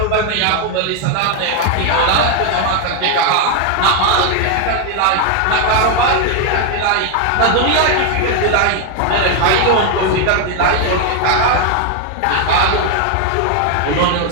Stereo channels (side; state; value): both; different; correlation 0.01